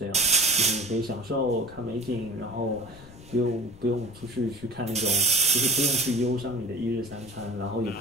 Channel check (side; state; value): left; noise; rumble, 19 dB below the sound